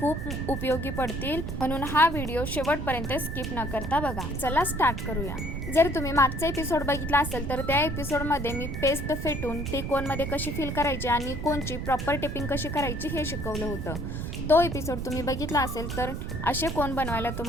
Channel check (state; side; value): noise; right; rumble, 4 dB below the sound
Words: उपयोगी पडतील, म्हणून हा व्हिडिओ शेवटपर्यंत स्किप न करता बघा। चला स्टार्ट करूया। जर तुम्ही मागचा एपिसोड बघितला असेल तर त्या एपिसोडमध्ये मी पेस्ट फेटून ती कोनमध्ये कशी फिल करायची आणि कोनची प्रॉपर टिपिंग कशी करायची हे शिकवलं होतं। तो एपिसोड तुम्ही बघितला असेल तर असे कोन बनवायला